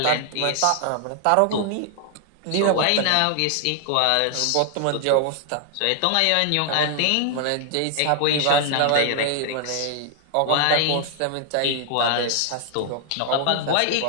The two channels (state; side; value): different; both; correlation 0.00